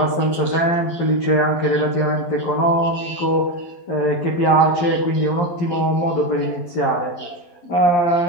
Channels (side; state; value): right; late; 12 ms